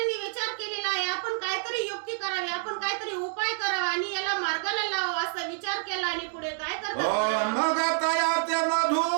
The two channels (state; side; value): silent; left; digital silence